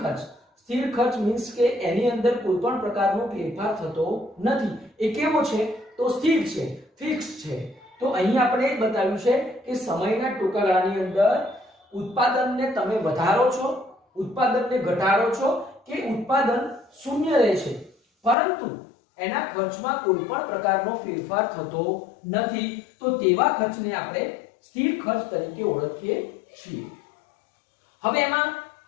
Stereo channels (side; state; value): right; drops out; at 18.4 s